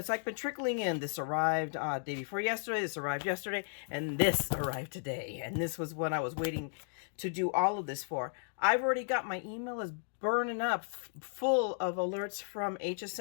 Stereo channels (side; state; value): right; silent; digital silence